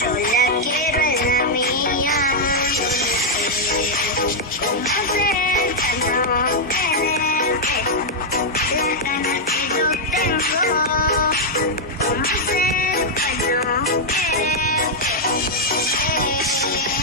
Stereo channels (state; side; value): normal; both; correlation -0.03